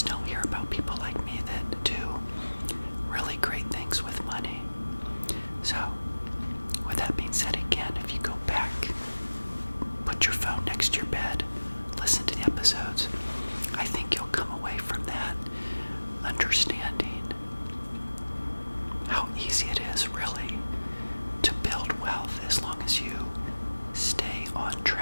don't hear about people like me that do really great things with money. So, with that being said, again, if you go back, put your phone next to your bed, listen to the episodes, I think you'll come away from that understanding how easy it is really to build wealth as long as you stay on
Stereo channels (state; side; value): inverted; both; correlation -1.00